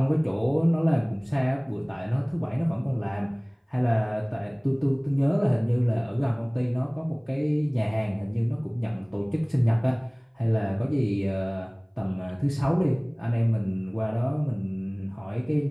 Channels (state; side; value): identical; both; correlation 1.00